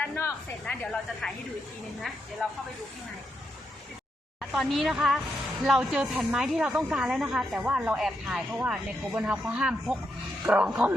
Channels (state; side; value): normal; both; correlation 0.83